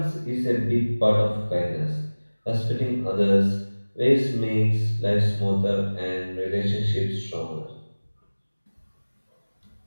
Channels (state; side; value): inverted; both; correlation -1.00